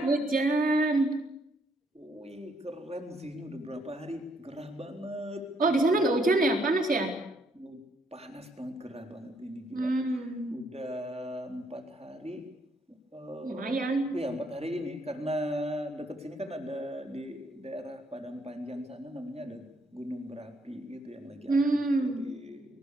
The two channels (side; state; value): both; normal; correlation 0.71